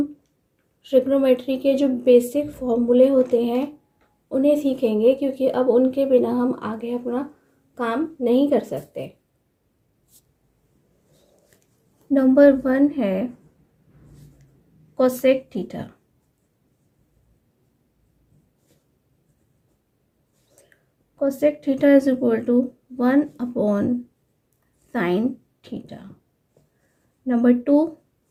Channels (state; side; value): identical; both; correlation 1.00